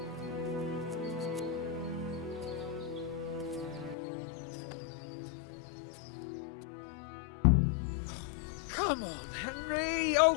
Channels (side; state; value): right; drops out; at 4.0 s